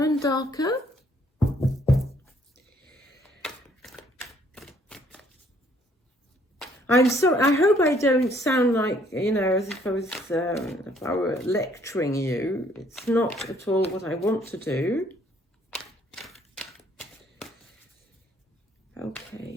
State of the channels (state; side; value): normal; both; correlation 0.64